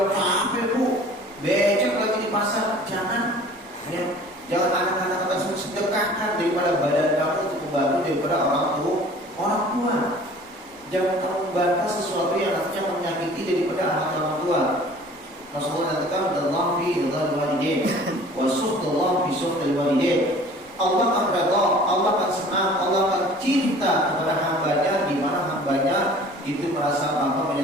capek bu, becek lagi di pasar, jangan ya. Jangan anak-anak tersebut sedekahkan daripada badan kamu untuk membantu daripada orang tua. Jangan kamu membantah sesuatu yang nantinya akan menyakiti daripada anak orang tua. Rasulullah nantikan Allah fi ridhal walidain wa sukhtullah fi sukhtil walidain. Allah akan redha, Allah akan senang, Allah akan cinta kepada hambanya di mana hambanya itu merasa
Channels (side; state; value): left; noise; rumble, 29 dB below the sound